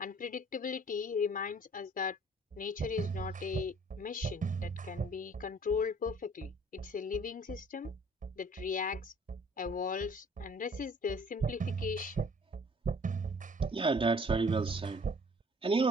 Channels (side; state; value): both; normal; correlation 0.55